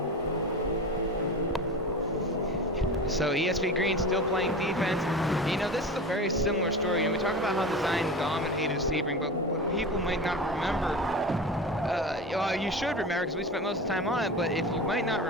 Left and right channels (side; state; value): both; normal; correlation 0.30